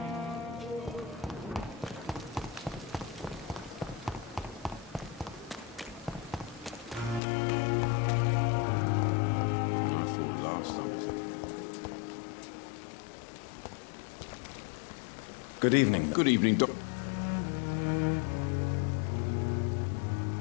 And I thought last summer's epidemic was difficult. Good evening. Good evening, Doc.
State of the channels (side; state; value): right; drops out; at 7.2 s